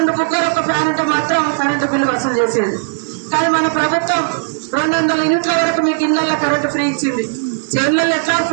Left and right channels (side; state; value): left; silent; digital silence